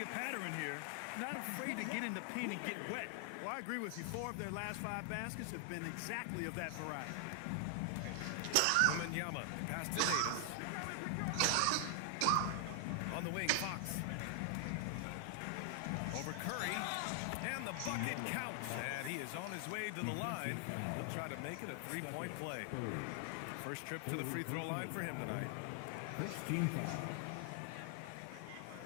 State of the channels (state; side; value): different; both; correlation 0.00